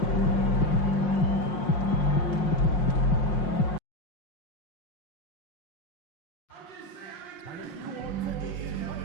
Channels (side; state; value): right; late; 5.6 ms